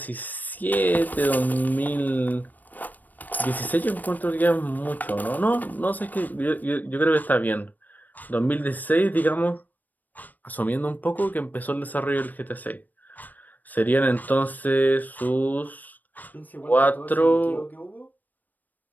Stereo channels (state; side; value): late; right; 0.085 ms